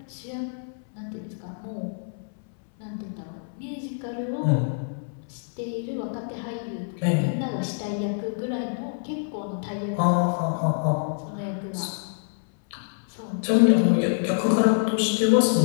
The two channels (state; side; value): silent; right; 61 dB below the other